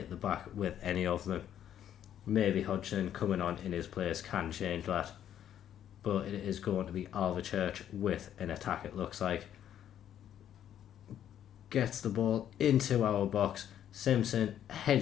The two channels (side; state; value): right; quieter; 10.4 dB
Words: the back with any of them. Maybe Hodgson coming on in his place can change that, but it is going to be Alvechurch with an attack, it looks like. Gets the ball into our box. Simpson